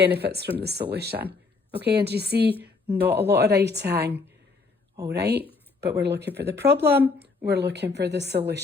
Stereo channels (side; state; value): right; quieter; 4.2 dB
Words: from the solution? Okay, and you see, not a lot of writing. All right, but we're looking for the problem. We're looking for the